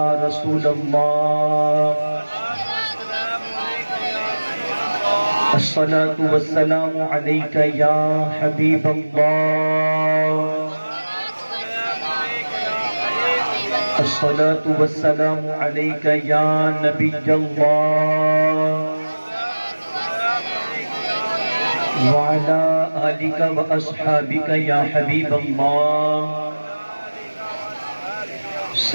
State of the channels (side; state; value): both; inverted; correlation -1.00